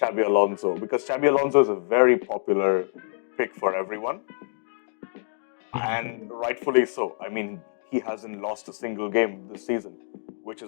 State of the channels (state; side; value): silent; right; digital silence